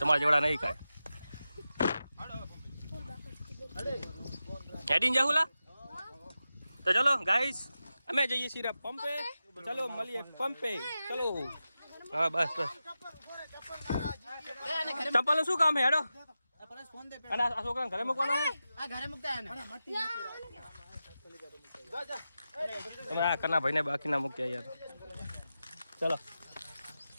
જેવડા નહીં કાંઈ હેડીને જાહુલા તો ચલો ગાઈસ અમે જઈએ છીએ પંપે ચલો મળીએ પંપે ચલો હા બસ ચપ્પલ શું કામ હે હેડો અને આ છોકરાને ઘરે મૂકવાનો હે આ ઘરે મૂકતા ને તમે આ કના ભાઈને બાકીના મૂક્યા યાર ચલો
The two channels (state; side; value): inverted; both; correlation -0.92